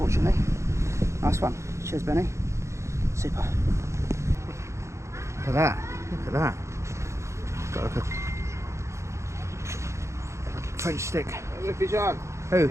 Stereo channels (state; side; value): late; left; 0.14 ms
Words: Nice one. Cheers, Benny. Super. Look at that. Look at that. Got like a French stick. Look, fish on. Who?